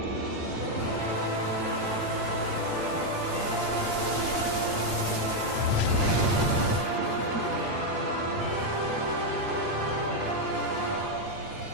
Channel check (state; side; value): late; right; 8.7 ms